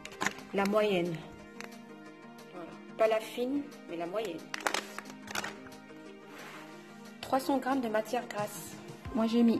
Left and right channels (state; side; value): identical; both; correlation 1.00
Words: la moyenne, voilà. Pas la fine mais la moyenne. 300 g de matière grasse, moi j'ai